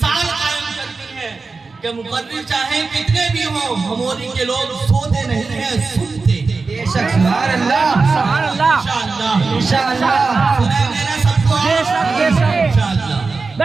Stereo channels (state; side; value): quieter; left; 4.2 dB